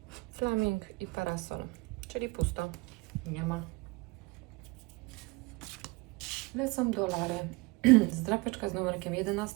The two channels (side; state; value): left; quieter; 24.7 dB